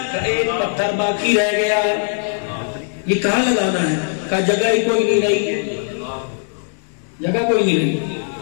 ایک پتھر باقی رہ گیا، یہ کہاں لگانا ہے؟ کہا جگہ ہی کوئی نہیں رہی، جگہ کوئی نہیں رہی۔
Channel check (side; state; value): right; silent; 66 dB below the other